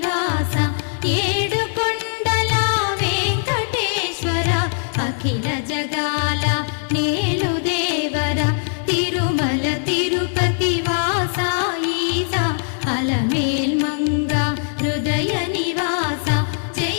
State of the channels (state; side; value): silent; right; digital silence